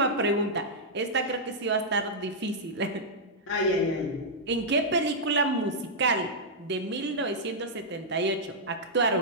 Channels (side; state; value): both; normal; correlation -0.08